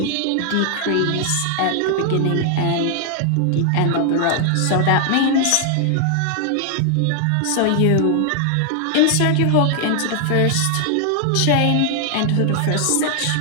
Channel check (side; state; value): both; different; correlation 0.00